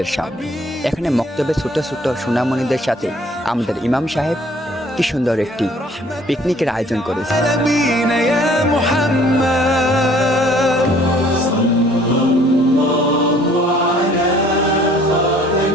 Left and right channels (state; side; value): normal; both; correlation 0.57